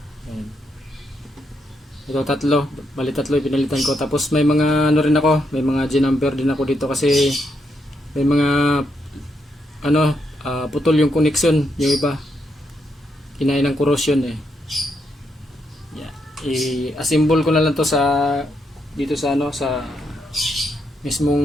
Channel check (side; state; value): both; normal; correlation 0.79